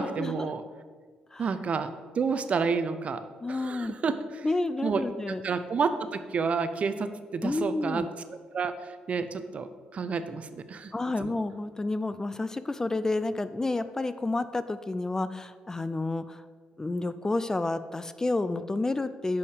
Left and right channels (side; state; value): both; normal; correlation 0.84